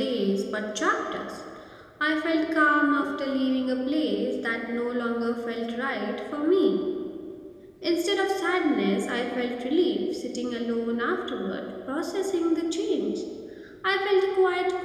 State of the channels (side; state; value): both; identical; correlation 1.00